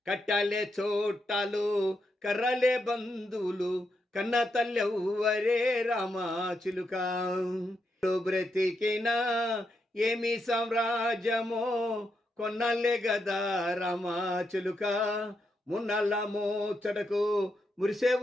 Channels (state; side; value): normal; both; correlation 0.83